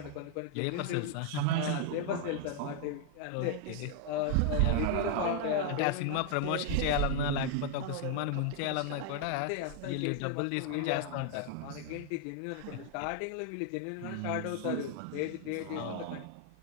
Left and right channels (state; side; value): different; both; correlation 0.00